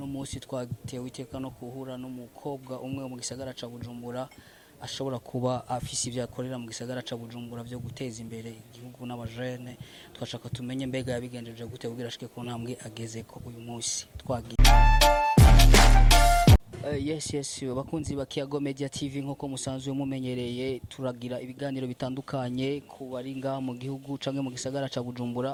munsi twatewe iteka no kuhura n'umukobwa umwe mu gisagara ca Bujumbura ashobora kuba afise ivyo akorera mu gisagara ca Bujumbura byo guteza imbere igihugu n'abajene twashaka tumenye mbega yabigenjeje gute kugira ashike ku ntambwe ageze ko uyu munsi twagiye Yes bakunzi ba Kiago Media TV nk'uko musanzwe mumenyereye turagira ibiganiro bitandukanye ku bari ngaha mu gihugu canke mu gisagara ca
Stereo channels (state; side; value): identical; both; correlation 1.00